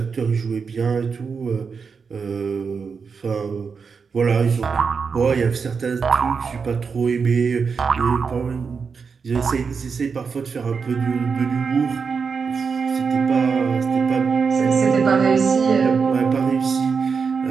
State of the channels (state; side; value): quieter; left; 5.5 dB